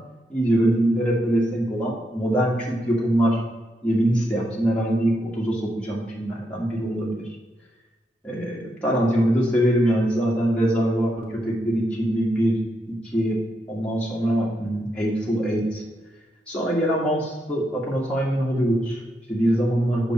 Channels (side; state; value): both; normal; correlation 0.82